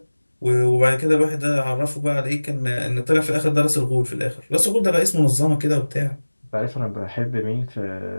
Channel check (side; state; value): both; inverted; correlation -1.00